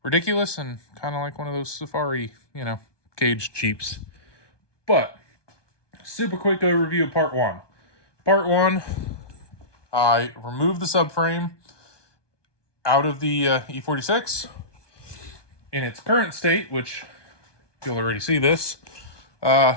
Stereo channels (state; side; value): late; right; 1.2 ms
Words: ridiculous and kind of like one of those safari, caged Jeeps. But, super quick overview of part 1. Part 1... I removed the subframe out of the E46 in its current state, which you'll already see this.